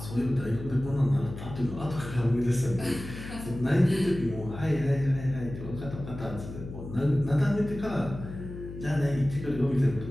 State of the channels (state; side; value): noise; left; hum, 11 dB below the sound